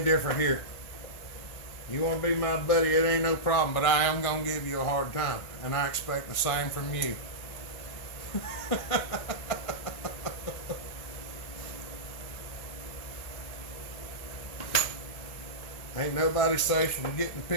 different here. You want to be my buddy, it ain't no problem, but I am going to give you a hard time. And I expect the same from you. Ain't nobody safe from getting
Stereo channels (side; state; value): right; late; 1.6 ms